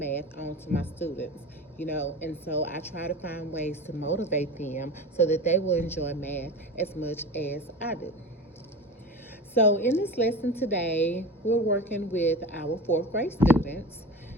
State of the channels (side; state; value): both; normal; correlation 0.31